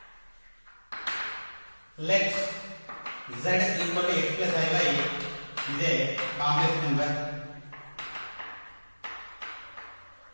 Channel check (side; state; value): both; inverted; correlation -1.00